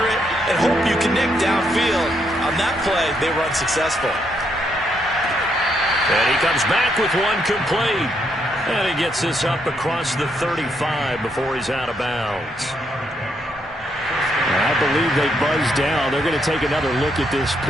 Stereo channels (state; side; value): normal; both; correlation 0.76